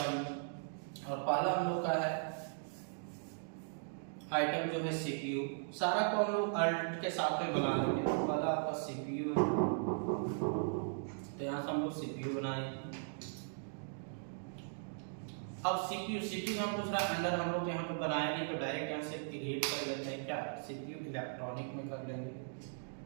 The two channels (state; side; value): silent; left; digital silence